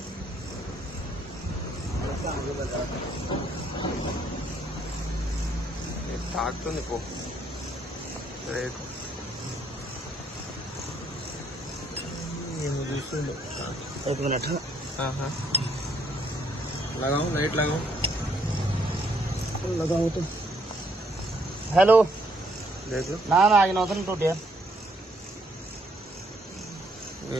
తాకుతుంది పో. एक मिनट. हाँ लगाओ लाइट लगाओ तो. हेलो देख लो. ना आगे नौतन टूट यार.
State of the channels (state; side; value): normal; both; correlation 0.69